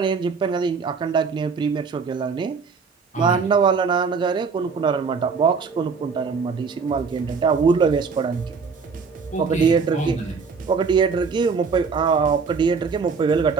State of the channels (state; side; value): quieter; left; 5.3 dB